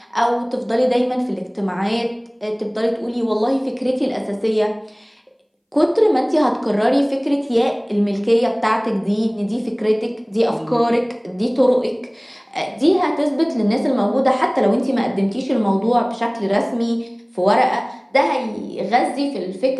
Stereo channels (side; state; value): both; identical; correlation 1.00